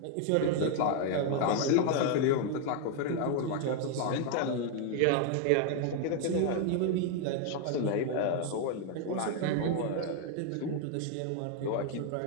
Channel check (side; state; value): both; different; correlation 0.00